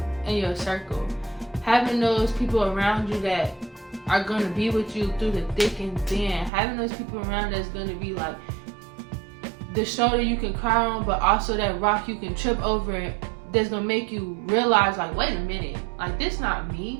in your circle, having those people around you that are going to be with you through the thick and thin, having those people around that's going to be like the shoulder you can cry on, but also that rock you can trip over, that's going to make you realize, like, wait a minute, like, this not me,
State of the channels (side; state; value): left; drops out; at 6.5 s